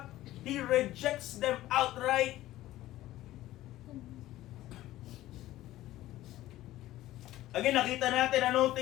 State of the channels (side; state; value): right; quieter; 15.3 dB